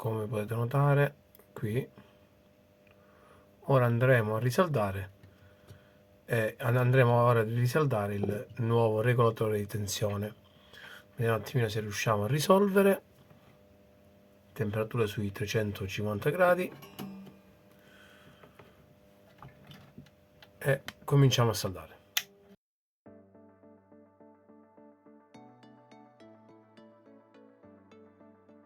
potete notare qui. Ora andremo a risaldare il nuovo regolatore di tensione. Vediamo un attimino se riusciamo a risolvere. Temperatura sui 350 gradi e cominciamo a saldare.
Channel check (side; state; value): both; identical; correlation 1.00